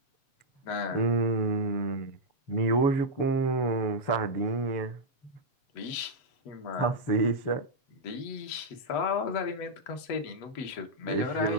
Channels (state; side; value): late; right; 8.1 ms